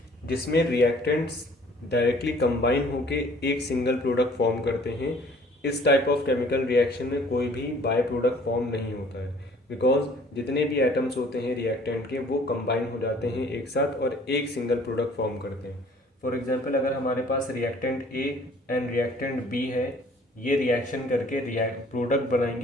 जिसमें रिएक्टेंट्स डायरेक्टली कंबाइन होके एक सिंगल प्रोडक्ट फॉर्म करते हैं। इस टाइप ऑफ केमिकल रिएक्शन में कोई भी बाय प्रोडक्ट फॉर्म नहीं होता है, बिकॉज जितने भी एटम्स होते हैं रिएक्टेंट के वो कंबाइन हो जाते हैं एक साथ और एक सिंगल प्रोडक्ट फॉर्म करते हैं। फॉर एग्जांपल, अगर हमारे पास reactant A and reactant B है, ये रिएक्शन करके प्रोडक्ट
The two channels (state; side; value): normal; both; correlation 0.54